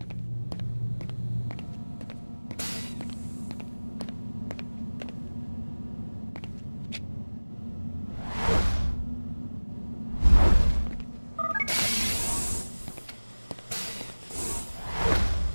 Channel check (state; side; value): inverted; both; correlation -1.00